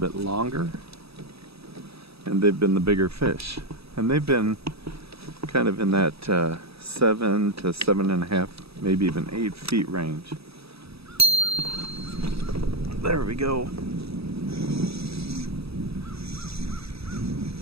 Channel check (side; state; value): left; late; 0.77 ms